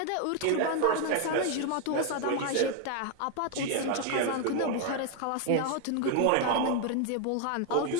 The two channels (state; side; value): different; both; correlation 0.00